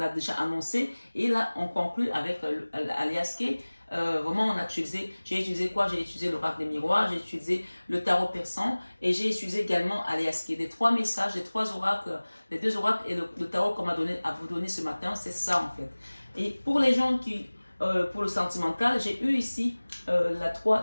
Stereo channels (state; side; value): inverted; both; correlation -1.00